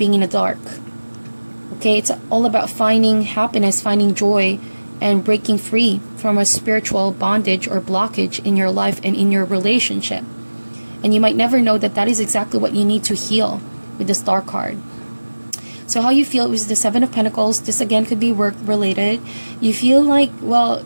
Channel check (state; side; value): inverted; both; correlation -1.00